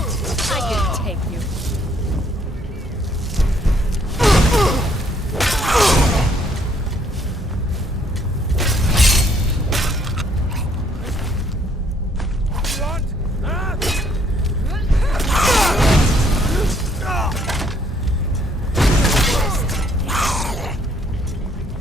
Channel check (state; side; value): normal; both; correlation 0.66